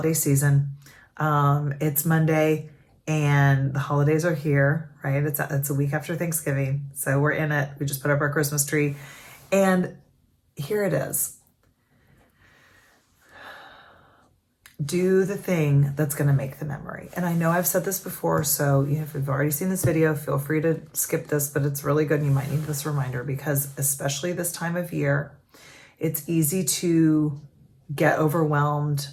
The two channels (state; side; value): identical; both; correlation 1.00